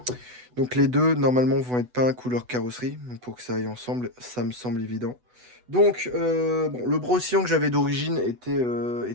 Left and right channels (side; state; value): left; late; 8.1 ms